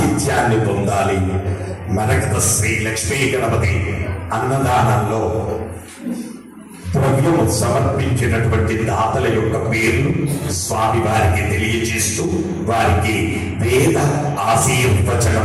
పొందాలి. మరకత శ్రీ లక్ష్మీ గణపతి అన్నదానంలో ద్రవ్యము సమర్పించినటువంటి దాతల యొక్క పేర్లు స్వామి వారికి తెలియజేస్తూ వారికి వేద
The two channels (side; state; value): both; identical; correlation 1.00